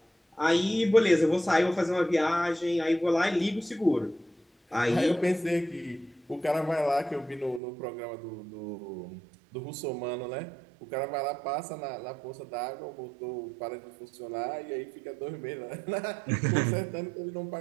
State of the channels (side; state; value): left; drops out; at 7.6 s